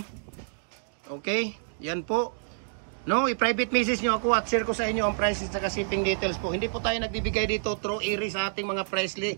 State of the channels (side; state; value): left; silent; digital silence